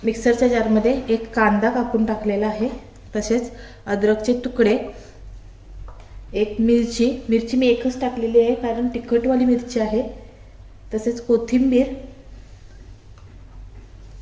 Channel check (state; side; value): identical; both; correlation 1.00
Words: मिक्सरच्या जारमध्ये एक कांदा कापून टाकलेला आहे, तसेच अद्रकचे तुकडे, एक मिरची मी एकच टाकलेली आहे कारण तिखटवाली मिरची आहे, तसेच कोथिंबीर